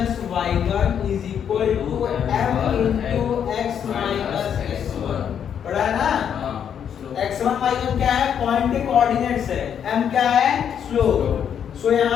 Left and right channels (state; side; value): quieter; right; 8.4 dB